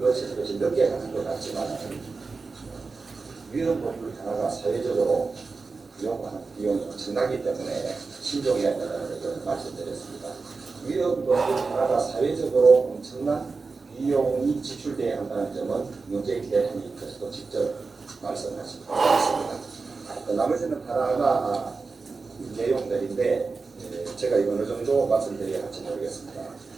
것이 늦게 가는 것 같지만 위헌 법률 하나가 사회적으로 요구하는 비용이 엄청나기 때문에 신중해야 된다는 것을 말씀드렸습니다. 위헌 법률 하나가 사회적으로 엄청난 비용이 지출돼야 한다는 점은 문재인 대통령께서도 직접 말씀하신 것 같습니다. 나머지는 하나하나 내용들인데 제가 이거 어느 정도 말씀드려야 할지 모르겠습니다.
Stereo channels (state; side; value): quieter; left; 4.3 dB